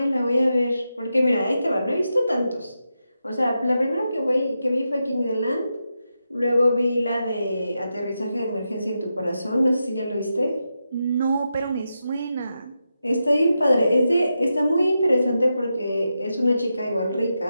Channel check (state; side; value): inverted; both; correlation -0.88